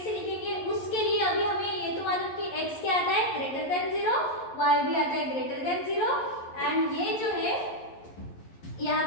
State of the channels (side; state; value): right; late; 11 ms